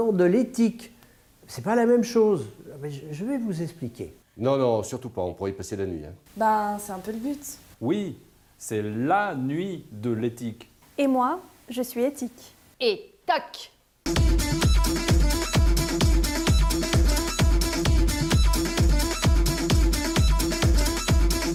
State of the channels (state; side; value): identical; both; correlation 1.00